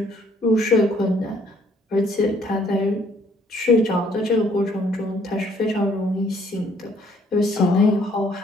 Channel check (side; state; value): both; normal; correlation 0.64